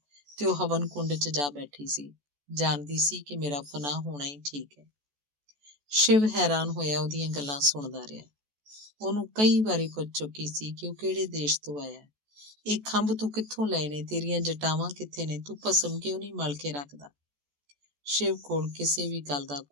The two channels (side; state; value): left; late; 14 ms